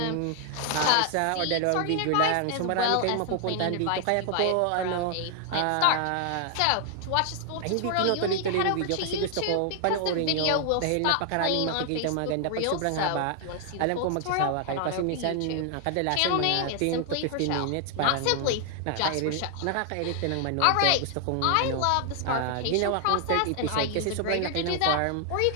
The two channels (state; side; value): different; both; correlation 0.00